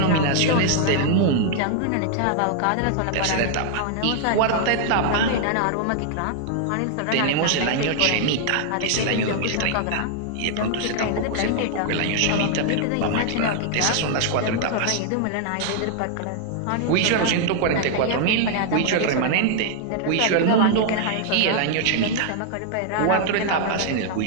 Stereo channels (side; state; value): both; different; correlation 0.00